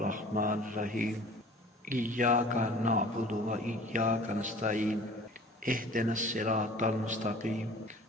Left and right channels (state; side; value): normal; both; correlation 0.45